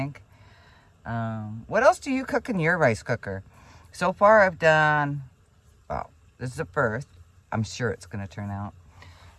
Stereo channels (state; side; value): identical; both; correlation 1.00